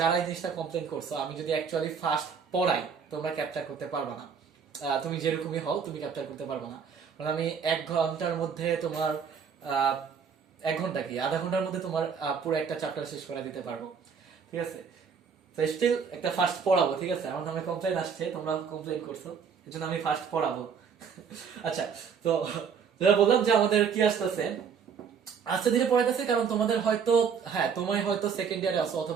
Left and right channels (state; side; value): quieter; left; 6.5 dB